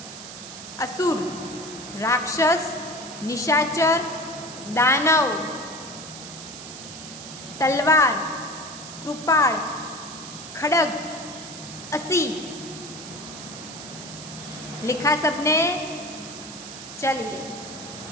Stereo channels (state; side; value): noise; right; hiss, 12 dB below the sound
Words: असुर, राक्षस, निशाचर, दानव। तलवार, कृपाण, खड़ग, असी। लिखा सबने? चलिए,